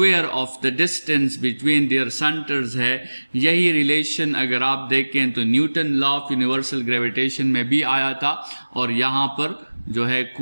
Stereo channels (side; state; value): both; inverted; correlation -1.00